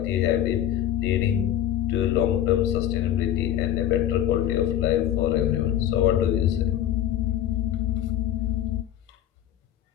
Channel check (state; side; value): quieter; right; 11.5 dB